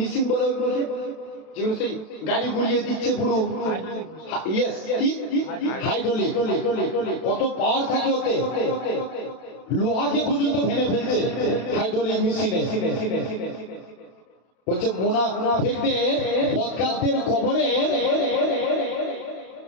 বলে ওইগুলোকে, যেগুলো সেই গাড়ি ঘুরিয়ে দিচ্ছে পুরো, ইয়েস, কি হাইড্রোলিক, কত পাওয়ার থাকে ওতে, লোহাকে পর্যন্ত ভেঙে ফেলছে হাইড্রোলিক মেশিনে। বলছে মুনাফিকদের, বদকারদের কবরে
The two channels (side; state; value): right; late; 32 ms